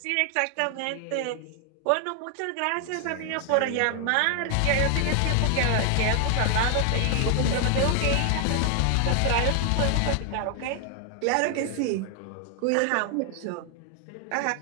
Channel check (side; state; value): both; different; correlation 0.00